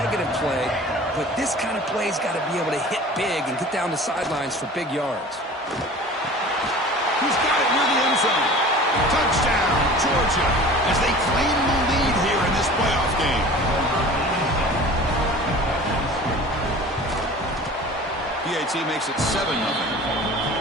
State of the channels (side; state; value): both; normal; correlation 0.41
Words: play, but this kind of play's got to be able to hit big and get down the sidelines for big yards. He's got it near the end zone. Touchdown, Georgia, as they claim the lead here in this playoff game. PAT makes it 7-0.